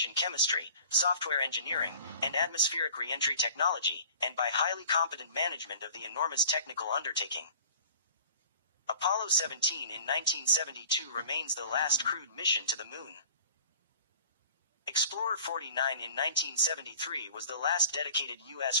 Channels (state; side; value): inverted; both; correlation -0.45